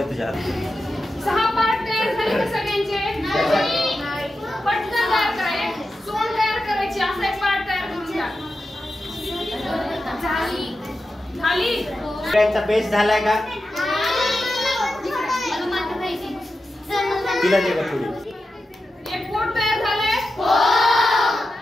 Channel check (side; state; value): both; normal; correlation 0.91